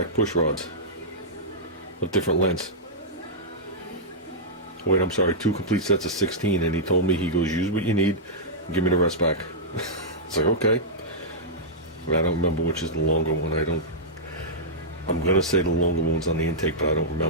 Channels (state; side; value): normal; both; correlation -0.11